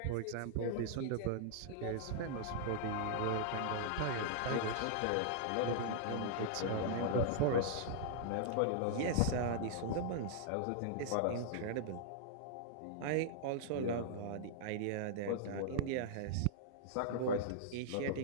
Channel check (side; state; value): both; different; correlation -0.01